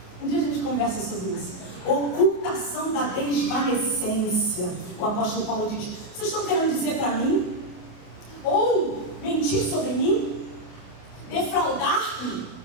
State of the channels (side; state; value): right; late; 28 ms